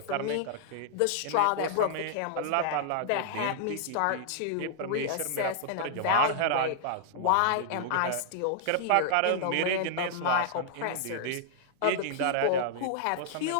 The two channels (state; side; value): different; both; correlation -0.01